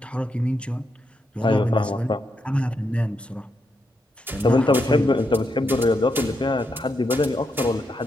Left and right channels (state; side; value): normal; both; correlation 0.82